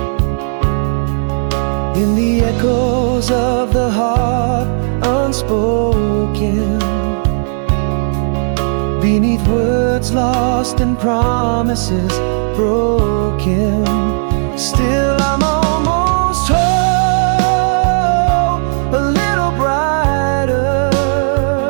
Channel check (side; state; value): left; silent; digital silence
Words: In the echoes of the heart unspoken, beneath words lost and promises broken. Still I'm almost home, a little brighter,